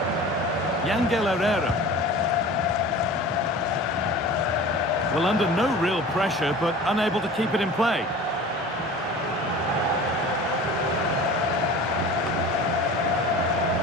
Yangel Herrera. Well, under no real pressure, but unable to keep it in play.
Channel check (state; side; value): normal; both; correlation 0.39